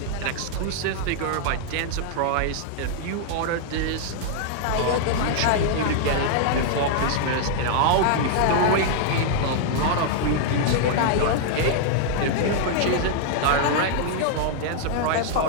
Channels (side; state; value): both; different; correlation -0.01